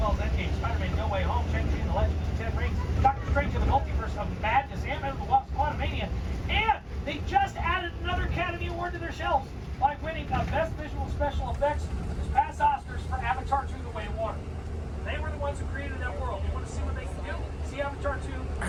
as Endgame, Spider-Man No Way Home, Shang-Chi and the Legend of the Ten Rings, Doctor Strange and the Multiverse of Madness, Ant-Man and the Wasp, Quantumania, and they just added another Academy Award to their shelves by winning Best Visual Special Effects this past Oscars for Avatar 2: The Way of Water. They were the ones who created that world. You want to see what they can do? See Avatar 2? I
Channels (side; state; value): both; identical; correlation 1.00